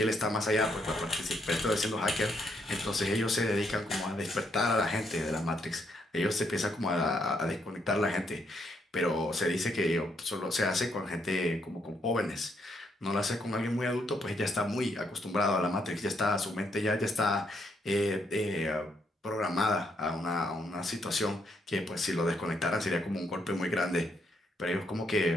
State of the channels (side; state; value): both; normal; correlation 0.75